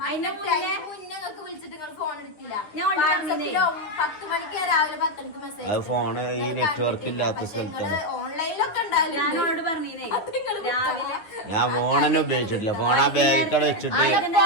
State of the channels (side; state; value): right; late; 9.8 ms